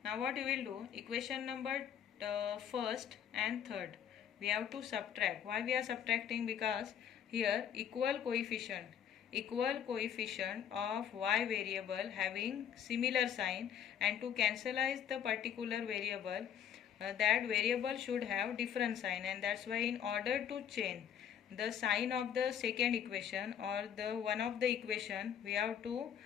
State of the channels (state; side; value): quieter; right; 9.0 dB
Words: Now what we will do, equation number first and third, we have to subtract. Why we are subtracting? Because here equal coefficient of y variable having similar sign, and to cancelize the particular variable, that variable should have different sign, and that's why in order to change the sign of the second equation or the one of the equation, we have to